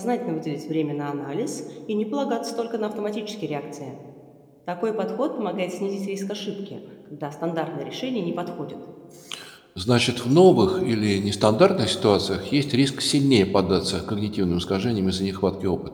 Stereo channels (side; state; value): both; identical; correlation 1.00